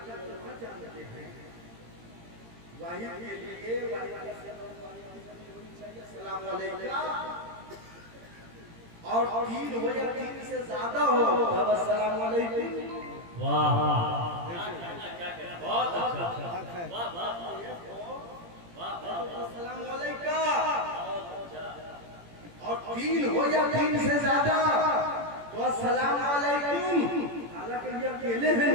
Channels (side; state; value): left; late; 17 ms